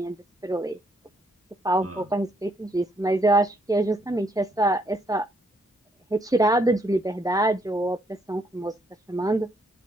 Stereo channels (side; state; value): both; normal; correlation 0.71